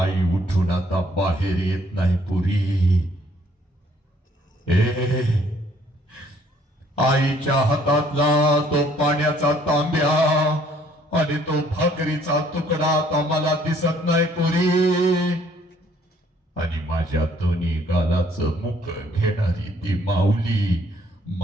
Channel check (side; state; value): both; normal; correlation 0.63